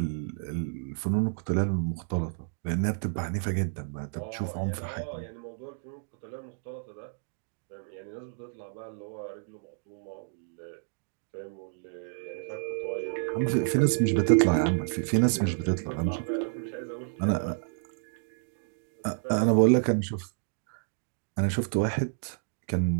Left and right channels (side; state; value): left; silent; digital silence